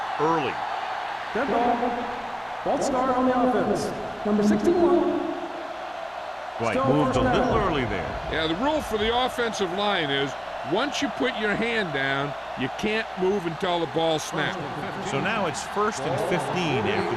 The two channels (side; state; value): both; identical; correlation 1.00